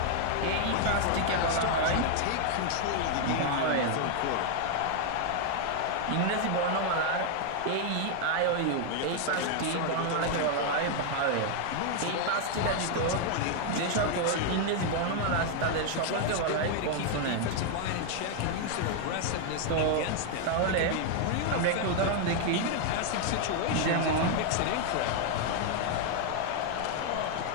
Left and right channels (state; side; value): different; both; correlation 0.00